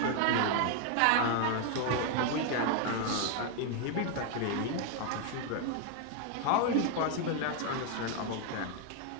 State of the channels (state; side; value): different; both; correlation 0.00